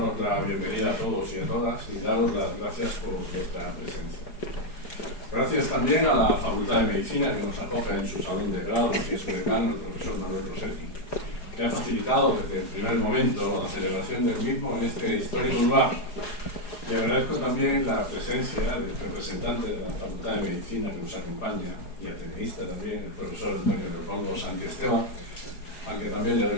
la bienvenida a todos y a todas y daros las gracias por vuestra presencia. Gracias también a la Facultad de Medicina, que nos acoge en su salón de grados, y a su decano, el profesor Manuel Rossetti, que ha facilitado desde el primer momento la celebración del mismo en este histórico lugar. Y agradezco también la presencia del representante de la Facultad de Medicina que nos acompaña, y ateneísta también, el profesor Antonio Leopoldo Santiesteban, al que también le doy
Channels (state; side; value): late; right; 4.8 ms